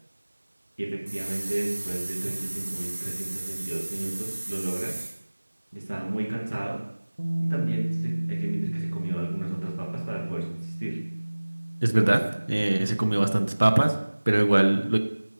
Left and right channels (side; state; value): both; inverted; correlation -1.00